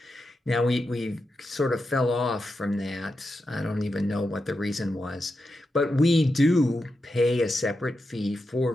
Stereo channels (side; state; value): both; normal; correlation 0.88